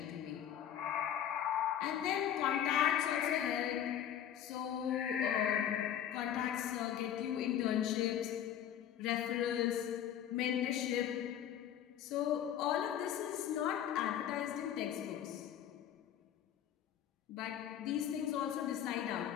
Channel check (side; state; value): right; quieter; 10.1 dB